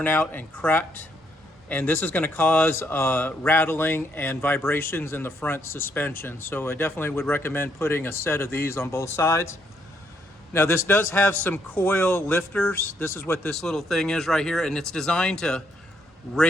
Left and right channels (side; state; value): both; normal; correlation 0.73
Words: out and cracked. And this is going to cause rattling and vibrations in the front suspension. So I definitely would recommend putting a set of these on both sides. Now this does have some coil lifters. This is what this little thing is right here. And it's designed to